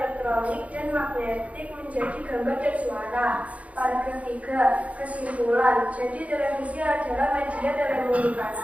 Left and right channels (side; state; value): left; late; 0.066 ms